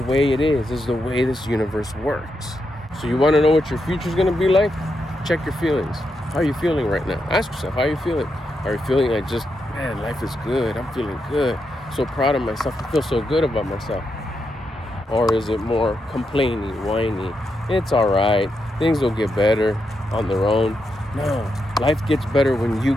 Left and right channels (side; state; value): both; normal; correlation 0.84